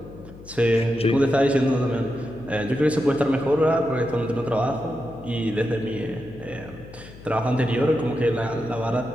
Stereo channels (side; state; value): left; noise; hum, 18 dB below the sound